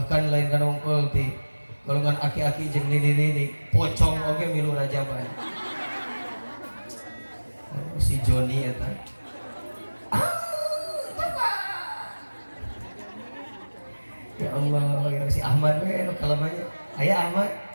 lain kan ongkol di golongan aki-aki jeung nenek-nenek pocong oge milu rajaban. Si Joni eta. Ya Allah, ya si Ahmad we anu kalamanya. Aya Ahmad.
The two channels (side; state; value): both; inverted; correlation -1.00